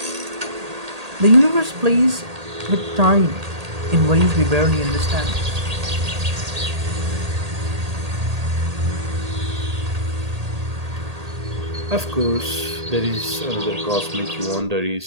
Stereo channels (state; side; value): late; left; 1.8 ms